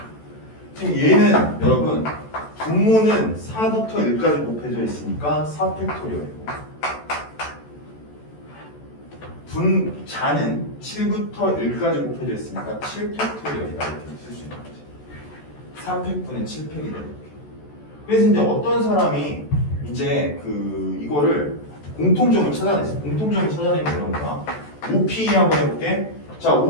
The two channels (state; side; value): late; right; 14 ms